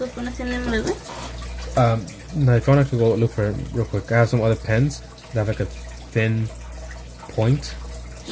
pones el nombre, güey? No, if you want, I could go look for it real quick. I have some other pens that have like a thin point.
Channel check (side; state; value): both; identical; correlation 1.00